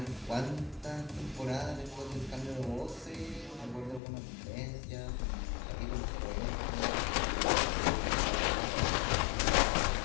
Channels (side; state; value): right; drops out; at 4.0 s